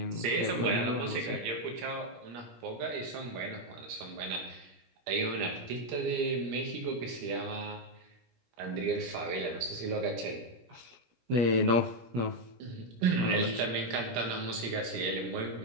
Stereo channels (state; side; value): late; left; 17 ms